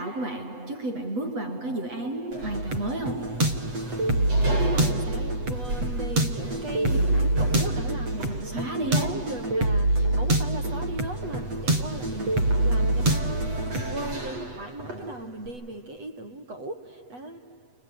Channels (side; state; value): left; late; 8.1 ms